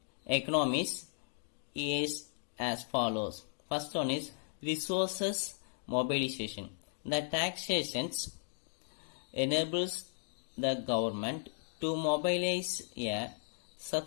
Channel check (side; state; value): right; silent; digital silence